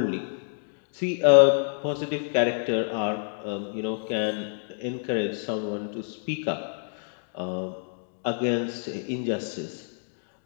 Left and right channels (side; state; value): right; silent; 60 dB below the other